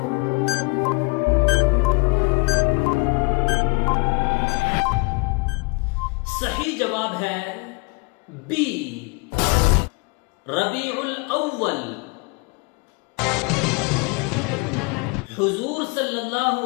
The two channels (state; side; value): quieter; right; 29.8 dB